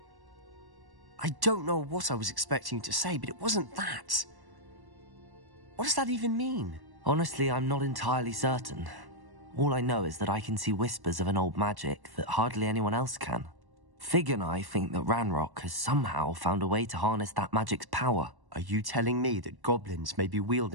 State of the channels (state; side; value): late; left; 1.1 ms